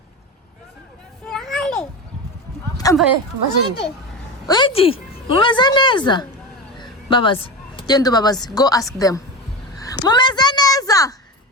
Ambaye, Wait, mumeze neza? Babazi, gendo babazi, go ask them. Mumeze neza?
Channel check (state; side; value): normal; both; correlation 0.23